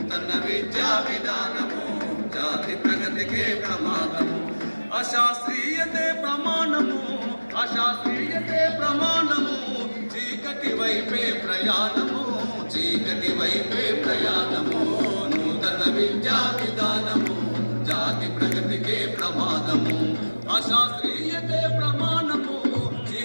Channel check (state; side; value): inverted; both; correlation -1.00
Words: జాతి ప్రగతికే ప్రమాదము అశాస్త్రీయతే ప్రమాణము అశాస్త్రీయతే ప్రమాణము చీకటి వైపే ప్రయాణము చీకటి వైపే ప్రయాణము నూతన విద్యా విధానము జాతి ప్రగతికే ప్రమాదము అశాస్త్రీయతే ప్రమాణము